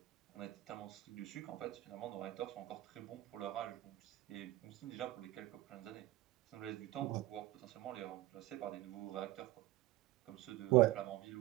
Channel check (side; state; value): left; quieter; 17.0 dB